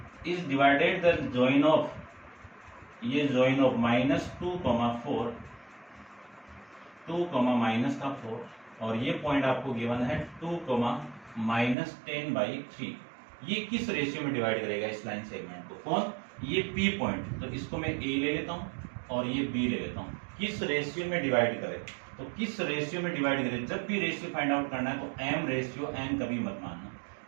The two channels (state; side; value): drops out; left; at 11.8 s